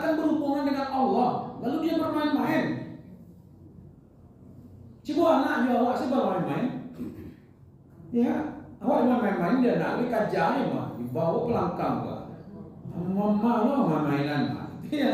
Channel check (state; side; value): identical; both; correlation 1.00